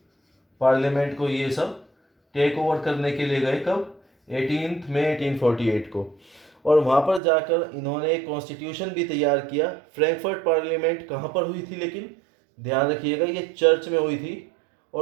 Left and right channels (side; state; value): left; drops out; at 7.2 s